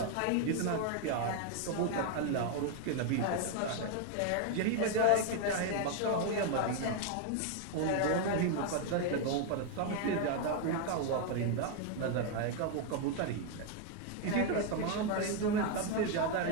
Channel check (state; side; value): different; both; correlation 0.01